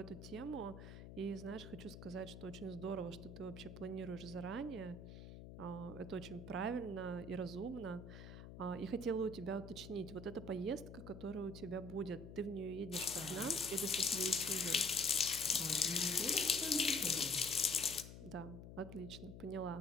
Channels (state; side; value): noise; left; hum, 12 dB below the sound